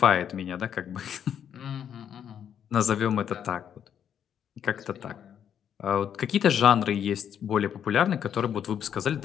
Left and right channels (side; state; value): right; quieter; 8.9 dB